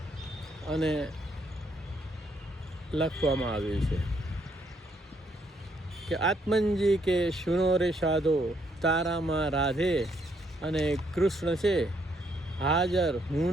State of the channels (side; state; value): both; normal; correlation 0.72